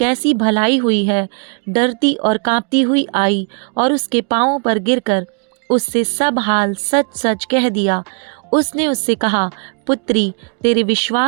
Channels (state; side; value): quieter; left; 39.8 dB